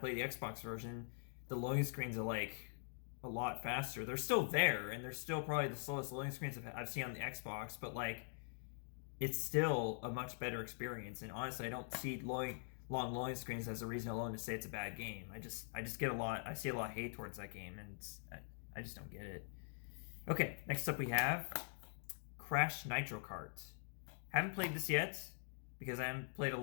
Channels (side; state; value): right; silent; digital silence